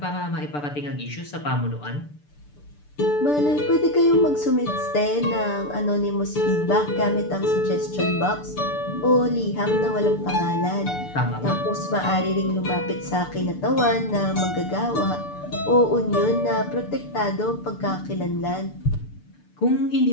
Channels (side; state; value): right; late; 6.8 ms